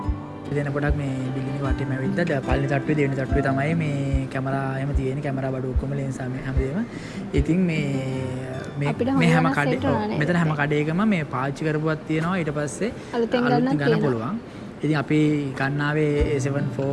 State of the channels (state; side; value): identical; both; correlation 1.00